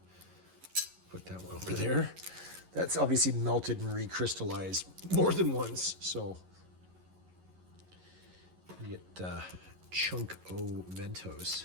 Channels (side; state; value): left; late; 11 ms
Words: put that one over there. That's obviously melted and recrystallized more than once, so you get chunk O